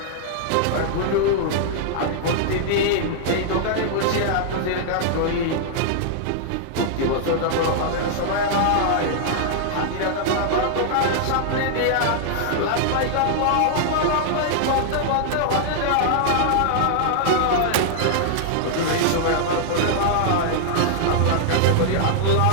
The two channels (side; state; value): both; different; correlation -0.01